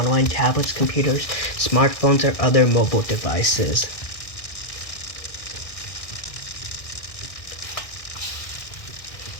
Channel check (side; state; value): right; late; 1.6 ms